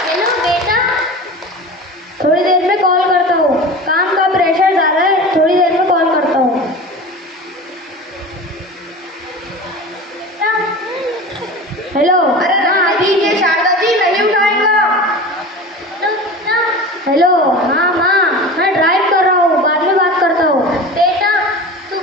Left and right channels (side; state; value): both; normal; correlation 0.33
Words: हेलो बेटा, थोड़ी देर में कॉल करता हूँ, काम का प्रेशर ज़्यादा है, थोड़ी देर में कॉल करता हूँ। हेलो। अरे हाँ दीजिए शारदा जी, नहीं उठाएगा। हेलो। हाँ माँ, मैं ड्राइव कर रहा हूँ, बाद में बात करता हूँ। बेटा, तू